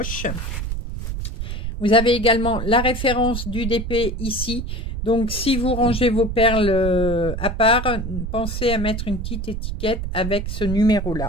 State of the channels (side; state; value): right; noise; rumble, 4 dB below the sound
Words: Vous avez également la référence du DP ici. Donc, si vous rangez vos perles à part, pensez à mettre une petite étiquette avec ce